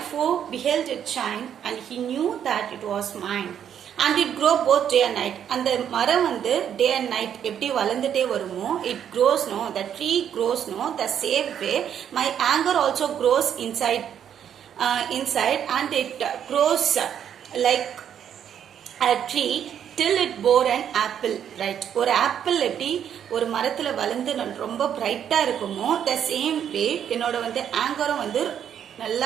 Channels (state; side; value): quieter; left; 9.1 dB